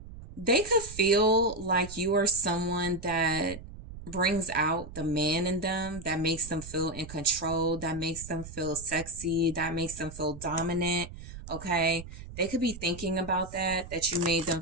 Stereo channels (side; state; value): right; noise; rumble, 13 dB below the sound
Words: they could feel like you are someone that brings out the man in them, that makes them feel in control, that makes them feel sexy, that makes them feel dominant. Okay, they could be thinking about that you made them